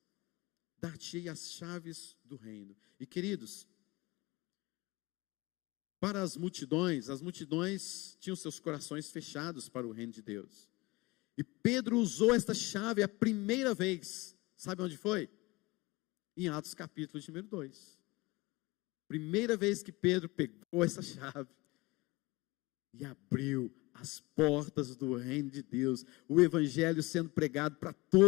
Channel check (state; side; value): quieter; right; 22.8 dB